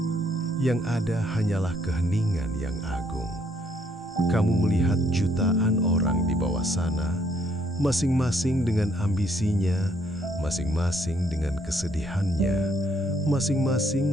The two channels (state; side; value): normal; both; correlation 0.69